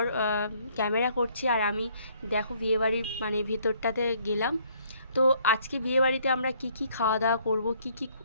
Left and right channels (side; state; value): both; inverted; correlation -0.64